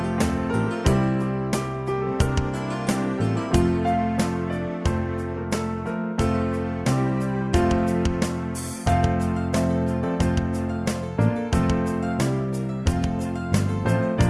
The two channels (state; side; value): identical; both; correlation 1.00